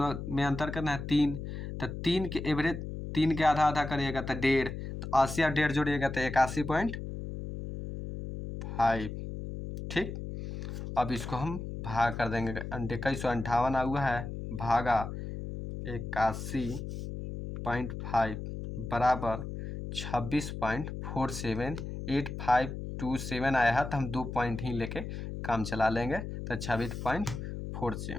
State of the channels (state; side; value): noise; left; hum, 7 dB below the sound